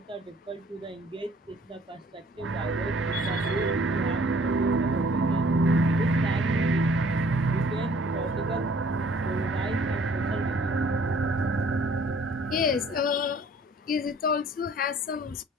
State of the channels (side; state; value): both; normal; correlation 0.56